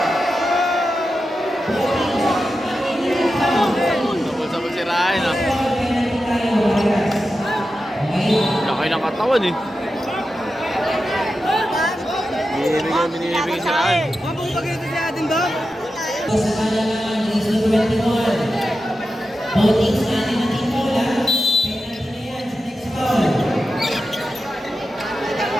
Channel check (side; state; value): both; normal; correlation 0.91